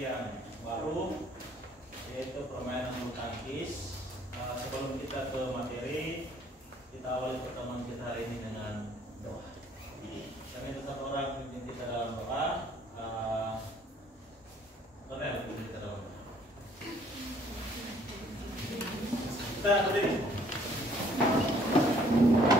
baru, yaitu permainan bulu tangkis. Sebelum kita ke materi, kita awali pertemuan kita hari ini dengan doa. Kami tetap orang pimpin kita dalam doa. Cornel, pimpin kita dalam doa. Kita berdiri.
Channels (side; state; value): both; normal; correlation 0.60